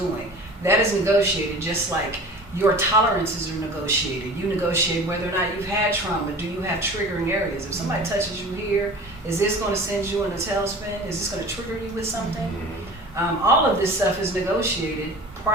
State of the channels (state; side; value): normal; both; correlation 0.39